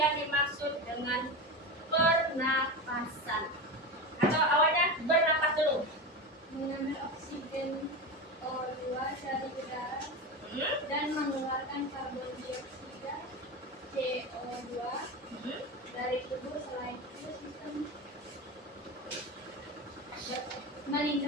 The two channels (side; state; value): both; normal; correlation 0.22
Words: dimaksud dengan pernapasan? Atau awalnya bernapas dulu? Mengambil oksigen O2 dari udara dan mengeluarkan karbon dioksida CO2 dari tubuh. Selain itu sistem